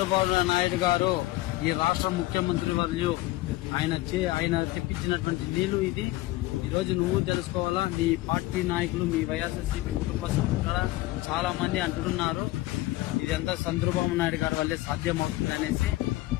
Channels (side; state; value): right; quieter; 18.4 dB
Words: నాయుడు గారు, ఈ రాష్ట్ర ముఖ్యమంత్రి వర్యులు. ఆయన తెప్పించినటువంటి నీళ్లు ఇది. ఈ రోజు నువ్వు తెలుసుకోవాలా. మీ పార్టీ నాయకులు, మీ వైఎస్ఆర్సీపీ కుటుంబ సభ్యులు చాలా మంది అంటున్నారు ఇదంతా చంద్రబాబు నాయుడు గారి వల్లే సాధ్యమవుతుంది అనేసి.